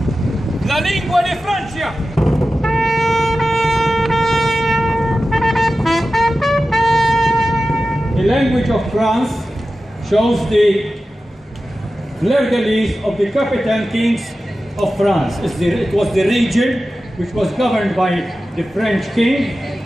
La lingua di Francia. The language of France shows the fleur-de-lis of the captain kings of France. It was the region which was governed by the French king.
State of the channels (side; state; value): both; normal; correlation 0.94